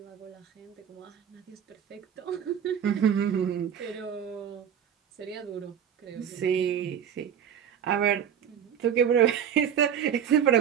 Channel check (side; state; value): left; quieter; 8.8 dB